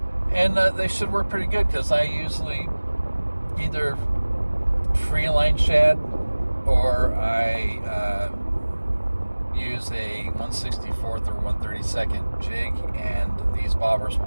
And they should work pretty good, because I usually either free line shad or I use a 1/64 or 1/32 jig, and these bobbers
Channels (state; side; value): inverted; both; correlation -1.00